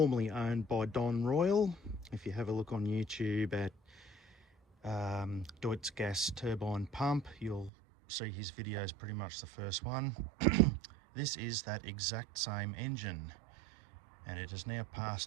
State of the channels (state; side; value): drops out; left; at 7.7 s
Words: owned by Don Royle. If you have a look on YouTube at Deutz gas turbine pump, you'll see his video is pretty much the first one. This is that exact same engine, and it has now